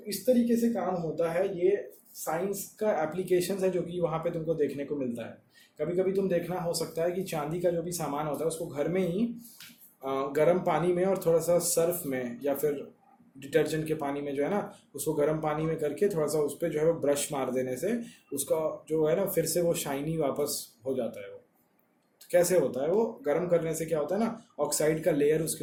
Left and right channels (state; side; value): identical; both; correlation 1.00